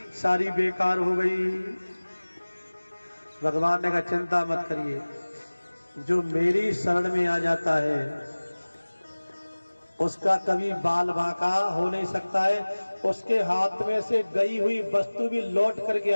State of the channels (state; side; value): inverted; both; correlation -1.00